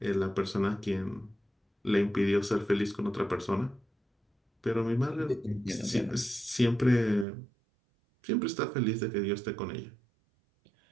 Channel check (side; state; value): left; drops out; at 7.2 s